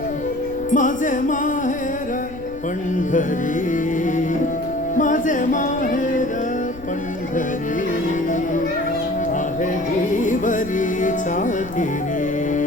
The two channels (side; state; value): left; noise; rumble, 16 dB below the sound